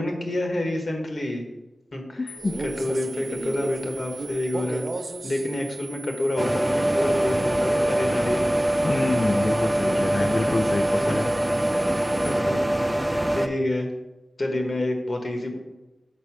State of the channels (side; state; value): both; normal; correlation 0.96